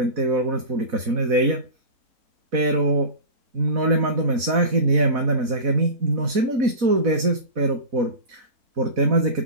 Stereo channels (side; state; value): left; late; 4.1 ms